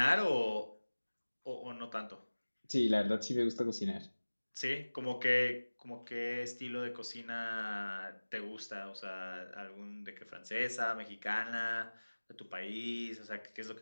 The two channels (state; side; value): inverted; both; correlation -1.00